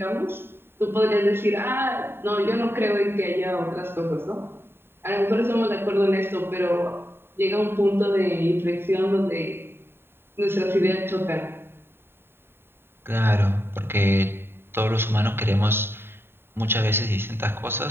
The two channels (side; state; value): left; late; 0.11 ms